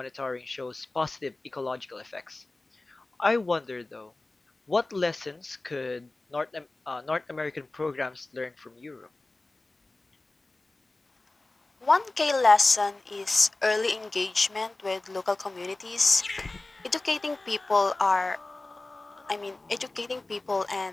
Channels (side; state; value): right; quieter; 3.0 dB